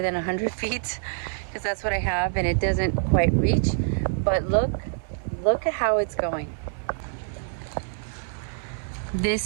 than 100 feet because that's what I have and it doesn't quite reach. But look at how it's going.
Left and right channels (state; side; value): silent; left; 61 dB below the other